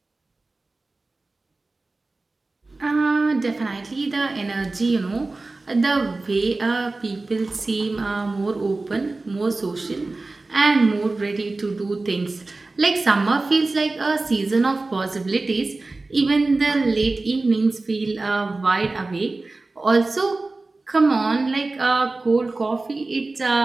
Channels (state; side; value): quieter; left; 3.3 dB